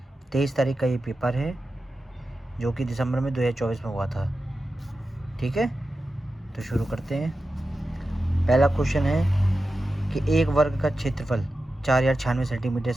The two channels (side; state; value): both; normal; correlation 0.92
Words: 23 तारीख का ये पेपर है जो कि दिसंबर में 2024 में हुआ था। ठीक है, तो शुरू करते हैं। पहला क्वेश्चन है कि एक वर्ग का क्षेत्रफल 4096 सेंटीमीटर